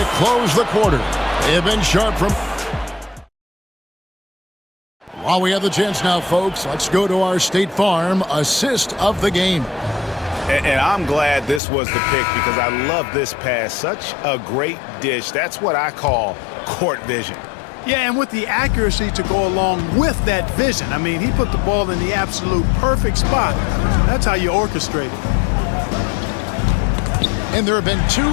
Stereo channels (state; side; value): drops out; right; at 11.6 s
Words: close the quarter. They have been sharp from... While we have the chance now, folks, let's go to our State Farm assist of the game. And I'm glad this was the pick because I love this pass. Such a great dish. That's what I call court vision. Yeah, and with the accuracy to go along with that vision. I mean, he put the ball in the absolute perfect spot. That's how you orchestrate it. And there have been two